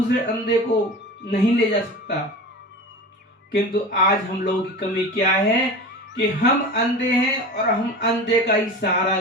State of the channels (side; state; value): both; normal; correlation 0.32